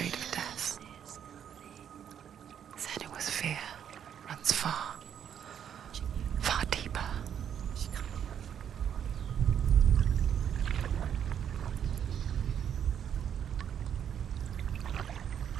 of death. Senua's fear runs far, far deeper.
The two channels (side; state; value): left; quieter; 8.9 dB